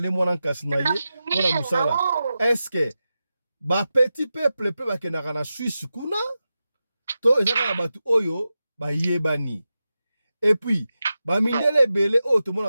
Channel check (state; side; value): inverted; both; correlation -0.92